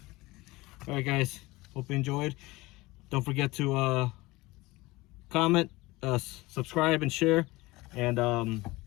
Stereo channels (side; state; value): right; quieter; 21.0 dB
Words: All right, guys. Hope you enjoyed. Don't forget to comment, subscribe, and share. And